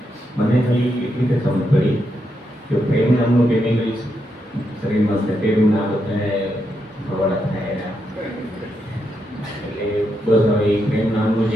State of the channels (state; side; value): normal; both; correlation 0.82